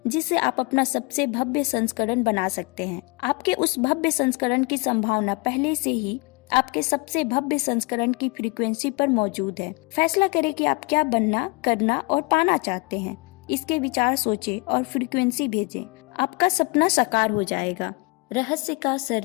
जिससे आप अपना सबसे भव्य संस्करण बना सकते हैं। आपके उस भव्य संस्करण की संभावना पहले से ही आपके सबसे भव्य संस्करण की फ्रीक्वेंसी पर मौजूद है। फैसला करें कि आप क्या बनना, करना और पाना चाहते हैं। इसके विचार सोचें और फ्रीक्वेंसी भेजें। आपका सपना साकार हो जाएगा। रहस्य का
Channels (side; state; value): right; quieter; 26.4 dB